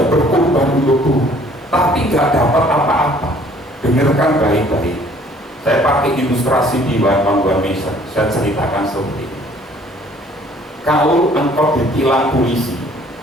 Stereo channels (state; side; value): normal; both; correlation 0.57